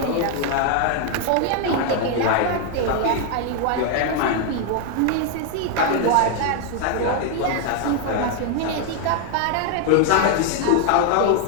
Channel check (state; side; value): different; both; correlation 0.00